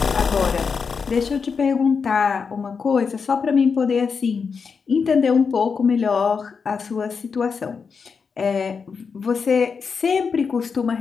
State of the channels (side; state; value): right; quieter; 5.6 dB